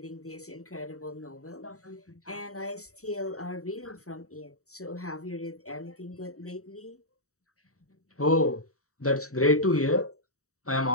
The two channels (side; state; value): right; late; 0.65 ms